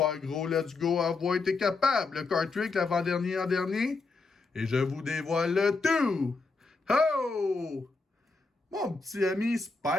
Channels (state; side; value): quieter; right; 3.9 dB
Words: gros. Let's go, envoie, t'es capable. Le card trick, l'avant-dernier en dernier. Et je vous dévoile le tout. Oh! Mon petit ami